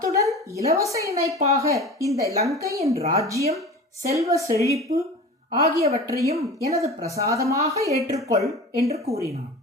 இலவச இணைப்பாக இந்த லங்கையின் ராஜ்யம், செல்வ செழிப்பு ஆகியவற்றையும் எனது பிரசாதமாக ஏற்றுக்கொள் என்று கூறினான்.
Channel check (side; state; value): both; normal; correlation 0.35